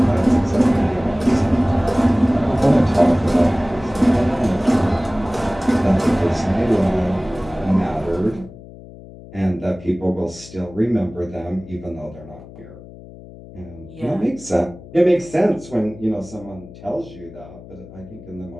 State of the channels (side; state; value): left; noise; hum, 18 dB below the sound